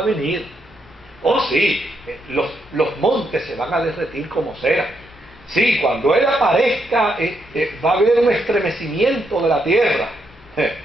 venir. Oh sí, los montes se van a derretir como cera. Sí, cuando Él aparezca va a haber un estremecimiento de la tierra.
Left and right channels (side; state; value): both; normal; correlation 0.79